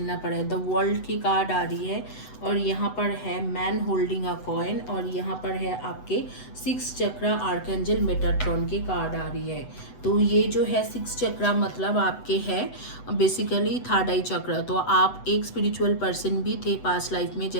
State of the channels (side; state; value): right; late; 8.0 ms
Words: पड़ा है। द वर्ल्ड की कार्ड आ रही है और यहाँ पर है मैन होल्डिंग अ कॉइन और यहाँ पर है आपके सिक्स चक्रा आर्कएंजल मेटाट्रॉन की कार्ड आ रही है। तो ये जो है सिक्स चक्रा मतलब आपके है बेसिकली थर्ड आई चक्र। तो आप एक स्पिरिचुअल पर्सन भी थे पास्ट लाइफ में,